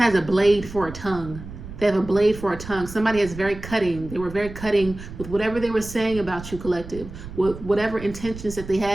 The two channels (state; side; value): noise; right; rumble, 13 dB below the sound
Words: has a blade for a tongue. They have a blade for a tongue. Somebody is very cutting. They were very cutting with whatever they were saying about you, collective. With whatever intentions that they